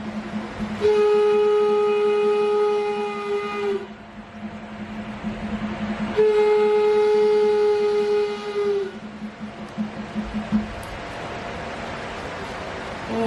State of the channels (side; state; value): both; identical; correlation 1.00